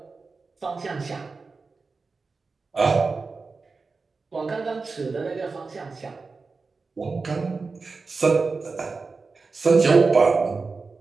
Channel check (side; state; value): left; quieter; 4.2 dB